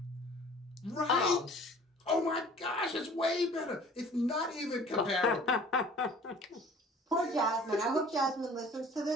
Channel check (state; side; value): normal; both; correlation 0.49